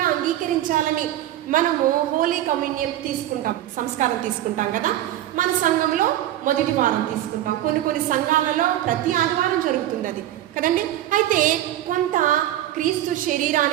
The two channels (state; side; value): quieter; left; 13.2 dB